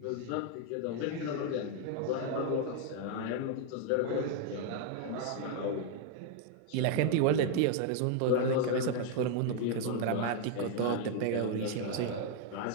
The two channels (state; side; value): different; both; correlation 0.00